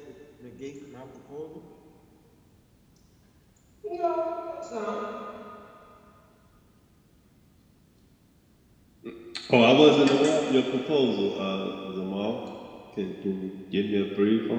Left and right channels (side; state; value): both; identical; correlation 1.00